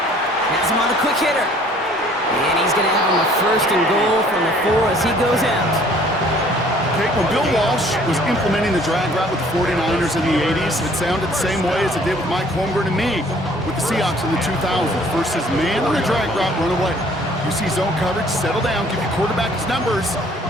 Has him on the quick hitter. And he's going to have him a 1st and goal from the 4 as he goes out. Okay, when Bill Walsh was implementing the drag route with the 49ers in the 80s, it sounded the same way as it did with Mike Holmgren and me with the Seahawks in the 2000s. Versus man on a drag route, run away. You see zone coverage, settle down, give your quarterback his numbers,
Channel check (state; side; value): normal; both; correlation 0.56